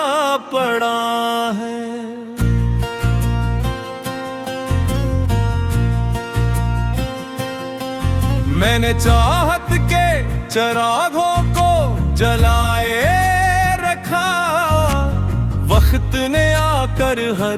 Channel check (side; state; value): both; identical; correlation 1.00